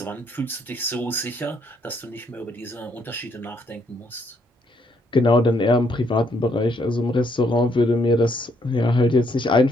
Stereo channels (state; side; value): normal; both; correlation 0.71